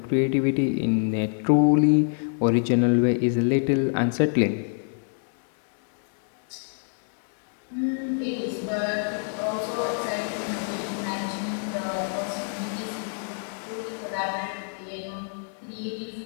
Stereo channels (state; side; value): silent; right; digital silence